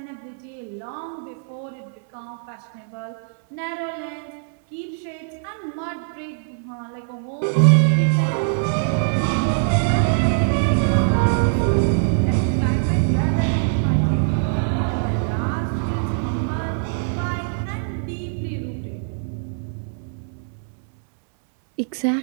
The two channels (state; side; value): silent; left; 63 dB below the other